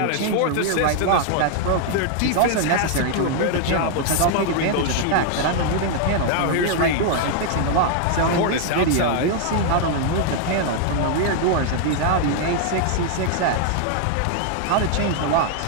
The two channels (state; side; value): different; both; correlation 0.00